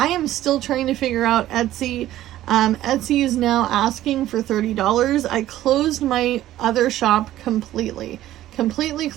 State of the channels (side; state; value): left; quieter; 13.9 dB